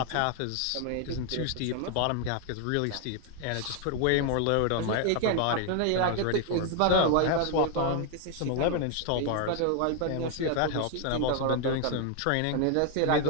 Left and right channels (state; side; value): different; both; correlation 0.00